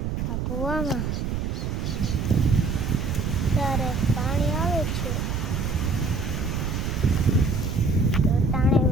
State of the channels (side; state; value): right; noise; rumble, 2 dB below the sound